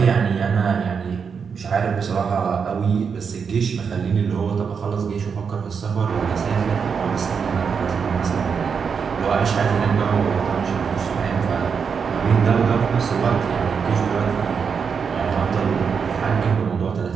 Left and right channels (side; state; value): left; quieter; 6.2 dB